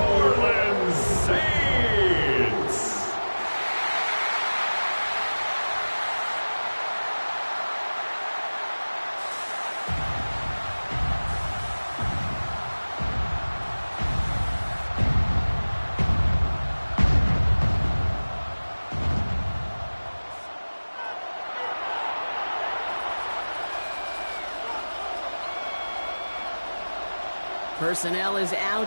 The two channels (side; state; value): both; inverted; correlation -1.00